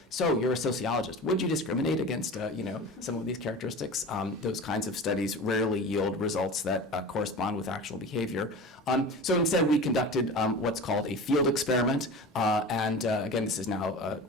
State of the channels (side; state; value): both; normal; correlation 0.34